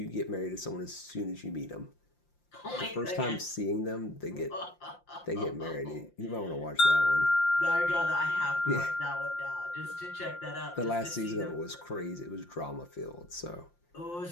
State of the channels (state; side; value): late; right; 5.7 ms